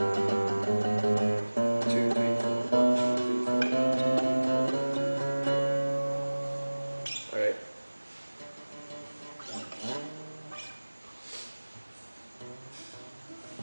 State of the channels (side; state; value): both; inverted; correlation -1.00